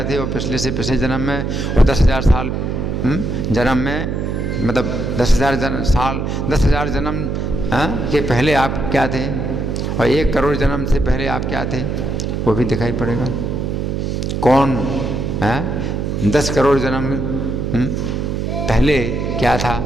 थे और पिछले से पिछले जन्म में और 10,000 साल जन्म में मतलब 10,000 जन्म के पहले आप क्या थे, और 1 करोड़ जन्म से पहले आप क्या थे, वो भी दिखाई पड़ेगा। कौन 10 करोड़ जन्म पहले क्या था,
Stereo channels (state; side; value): noise; right; hum, 1 dB below the sound